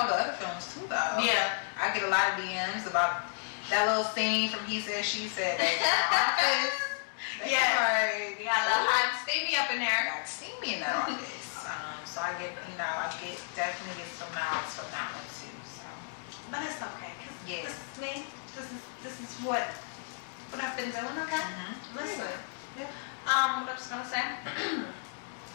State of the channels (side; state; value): right; silent; digital silence